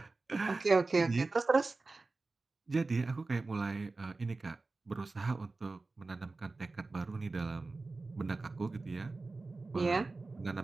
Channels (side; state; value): left; quieter; 3.6 dB